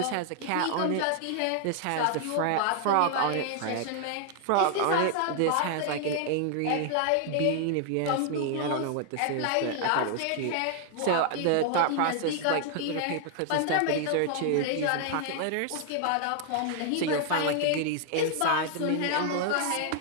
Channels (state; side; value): different; both; correlation 0.00